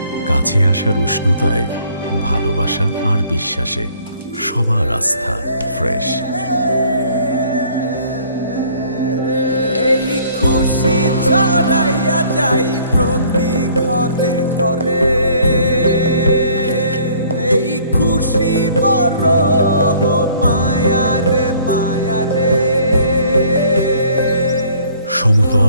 কাছে আসার উষ্ণতায়, ভালোবাসা আর বিশ্বাসে সবার আস্থা ফ্রেশ। এই খুশি ছড়াইয়া যাই প্রতি ঘরে ঘরে, এই খুশি বড় মায়ারে মায়ারে।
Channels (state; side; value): inverted; both; correlation -0.58